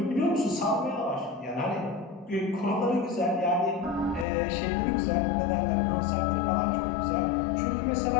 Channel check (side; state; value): right; drops out; at 4.2 s